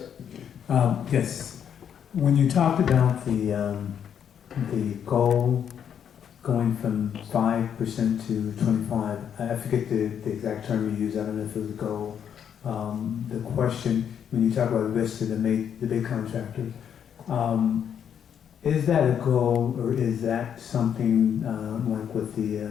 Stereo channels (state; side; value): quieter; right; 8.5 dB